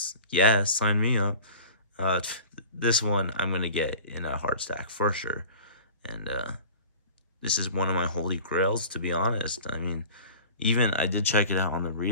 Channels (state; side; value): inverted; both; correlation -0.41